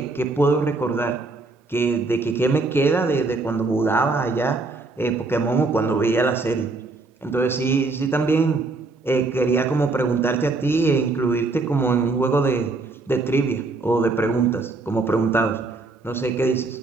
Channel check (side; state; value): left; quieter; 3.6 dB